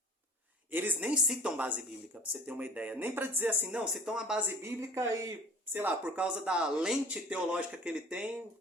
Eles nem citam base bíblica, para você ter uma ideia. Nem para dizer assim, não, citam a base bíblica e, sei lá, por causa da lente teológica que ele tem,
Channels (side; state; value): both; normal; correlation 0.45